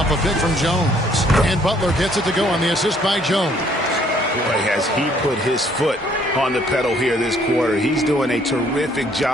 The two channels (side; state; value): both; normal; correlation 0.63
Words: a pick from Jones. And Butler gets it to go on the assist by Jones. Boy, has he put his foot on the pedal here this quarter. He's doing a terrific